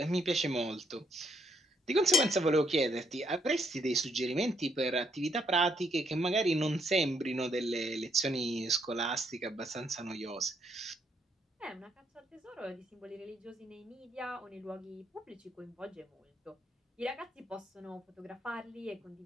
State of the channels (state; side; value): normal; both; correlation 0.73